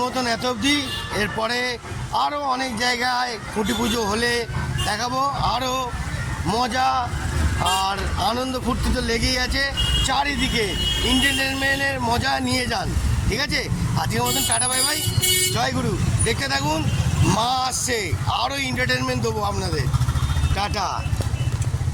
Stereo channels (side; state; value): both; identical; correlation 1.00